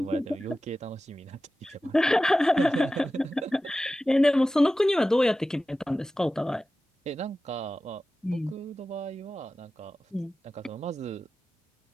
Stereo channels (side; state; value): both; normal; correlation 0.94